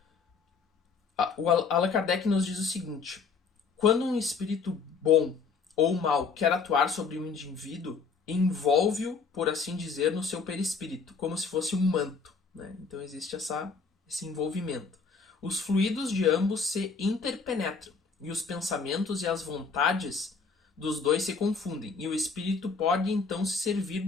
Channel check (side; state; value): right; quieter; 5.1 dB